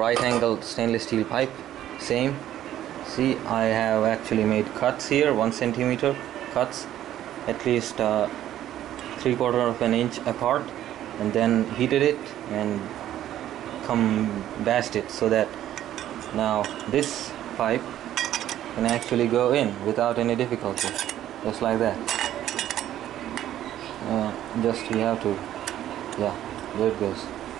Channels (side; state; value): left; quieter; 12.2 dB